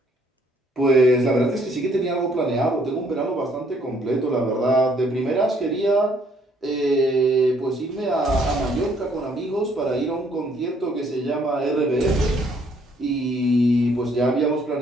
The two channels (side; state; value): both; normal; correlation 0.66